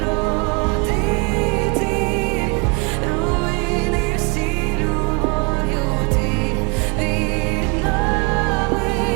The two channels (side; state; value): left; quieter; 31.6 dB